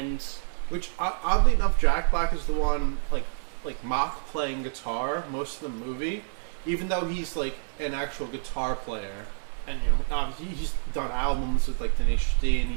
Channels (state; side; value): silent; left; 60 dB below the other